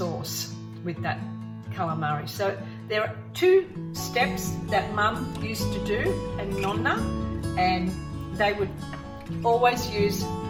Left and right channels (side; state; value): both; identical; correlation 1.00